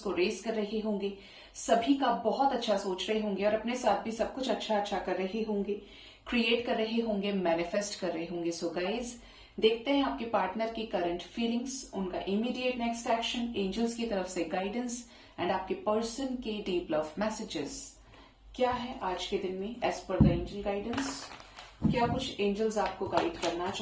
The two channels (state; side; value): identical; both; correlation 1.00